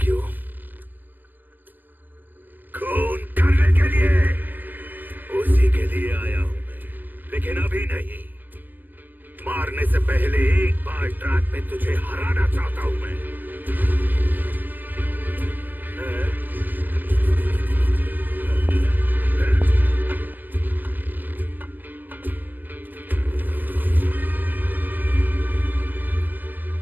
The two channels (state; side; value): late; left; 0.090 ms